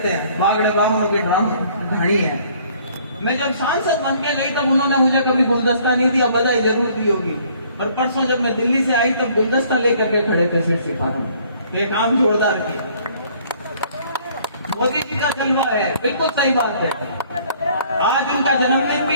हैं, बागड़े ब्राह्मणों के ढाणी है। मैं जब सांसद बन के गई तब उन्होंने मुझे कभी गुलदस्ता नहीं दिया, बधाई जरूर दी होगी। और परसों जब मैं दिल्ली से आई तब गुलदस्ता लेकर के खड़े थे सीट सिपाही में। ये काम जोरदार किया। मोदी जी का जलवा है, बिल्कुल सही बात है। आज उनका जन्मदिन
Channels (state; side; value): inverted; both; correlation -0.59